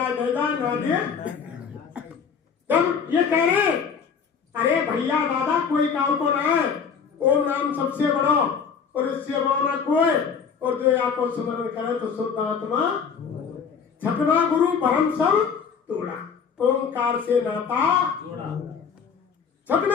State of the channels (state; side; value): quieter; right; 6.4 dB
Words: ना दे। जब ये कह रहे अरे भैया दादा कोई काम को ना है, ओम नाम सबसे बड़ो और इससे बड़ो ना कोई, और जो आपको स्मरण करे तो शुद्ध आत्मा। 6वां गुरु परम सब तोड़ा, ओंकार से नाता जोड़ा।